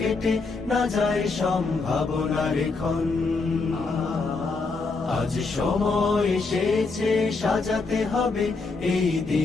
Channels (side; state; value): right; quieter; 4.0 dB